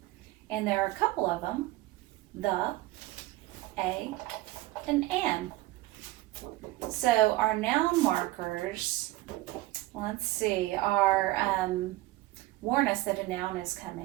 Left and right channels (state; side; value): quieter; left; 18.1 dB